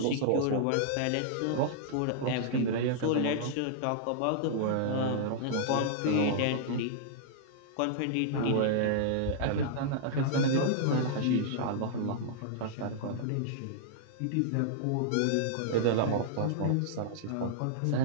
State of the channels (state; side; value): different; both; correlation -0.01